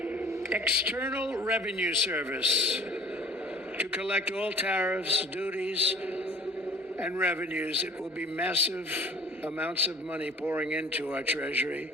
External Revenue Service to collect all tariffs, duties, and revenues. It will be massive amounts of money pouring into our treasury.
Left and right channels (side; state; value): both; normal; correlation 0.48